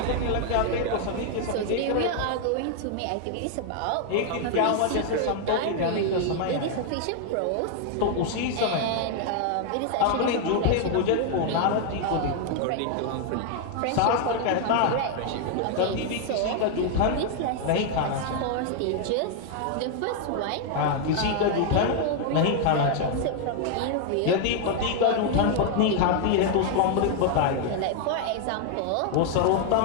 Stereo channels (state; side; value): different; both; correlation 0.00